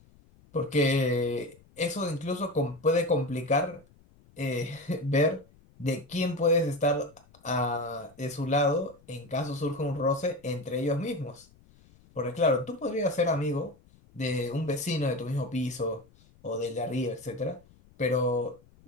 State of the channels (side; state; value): left; noise; rumble, 28 dB below the sound